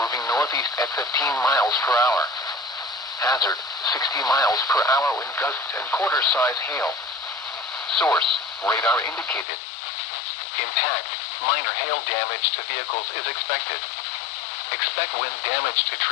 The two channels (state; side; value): drops out; right; at 9.5 s